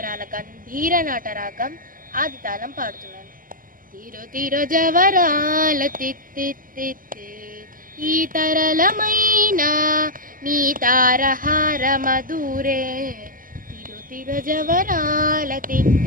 గంభీర నాటరాగం ఆదితాళం పాడుతున్నాను. తిరు తిరు జవరాల తిత్తిత్తిత్తి ఈ తరళమైన నీ తారహార మధురే తిరు తిరు జవరాల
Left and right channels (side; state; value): left; late; 0.41 ms